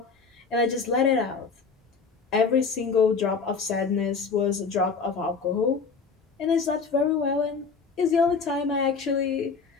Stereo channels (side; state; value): right; quieter; 5.1 dB